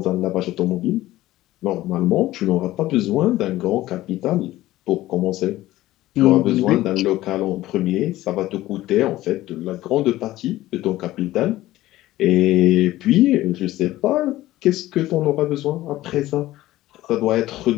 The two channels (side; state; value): right; quieter; 16.0 dB